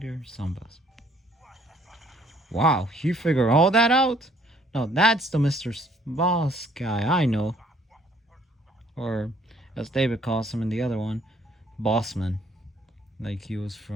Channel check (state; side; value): normal; both; correlation 0.62